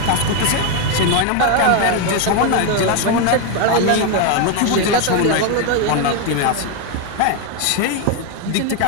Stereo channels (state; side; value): different; both; correlation 0.01